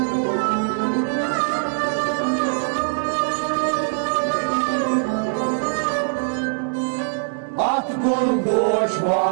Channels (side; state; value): left; silent; 63 dB below the other